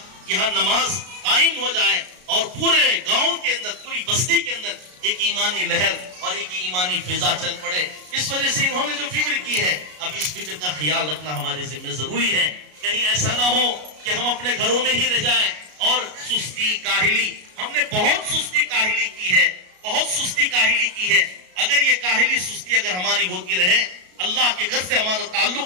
यहाँ नमाज कायम हो जाए और पूरे गांव के अंदर, पूरी बस्ती के अंदर एक ईमानी लहर और एक ईमानी फिजा चल पड़े। इस वजह से इन्होंने जो फिक्र की है, अब इस फिक्र का ख्याल रखना हमारे जिम्मे जरूरी है। कहीं ऐसा ना हो कि हम अपने घरों में ही रह जाएं और सुस्ती काहिली, हमने बहुत सुस्ती काहिली की है, बहुत सुस्ती काहिली की है। अगर ये काहिली सुस्ती अगर हमारी होती रहे, अल्लाह के घर से हमारा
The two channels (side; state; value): left; late; 33 ms